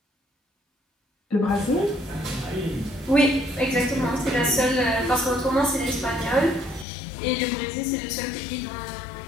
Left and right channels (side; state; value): right; drops out; at 6.9 s